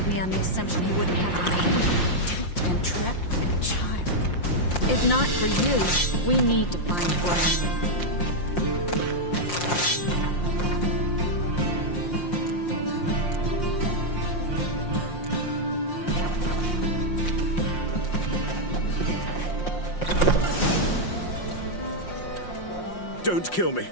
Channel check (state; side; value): late; right; 5.7 ms